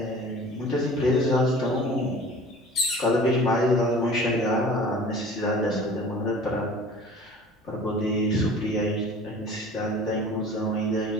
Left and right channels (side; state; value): both; normal; correlation 0.44